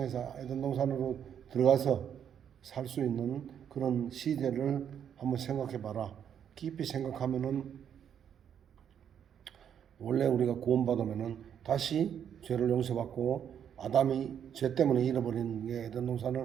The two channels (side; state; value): left; quieter; 8.7 dB